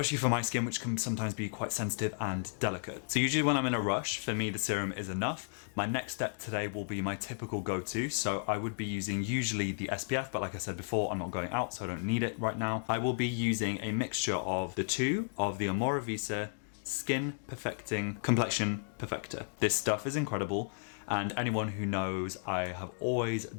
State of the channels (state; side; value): silent; right; digital silence